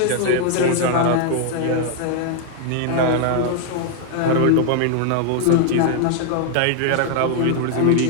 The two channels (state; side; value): different; both; correlation 0.00